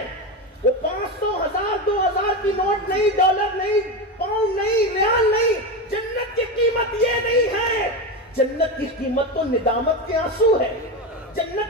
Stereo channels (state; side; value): normal; both; correlation 0.17